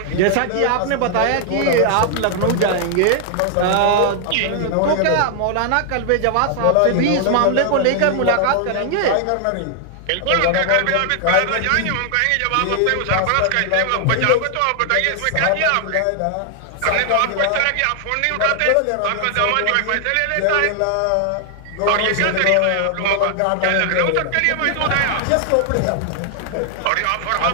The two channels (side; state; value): both; different; correlation 0.00